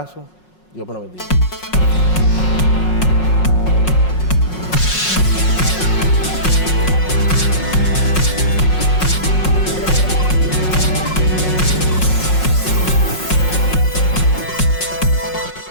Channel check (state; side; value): late; right; 5.5 ms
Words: Dios me lo bendiga.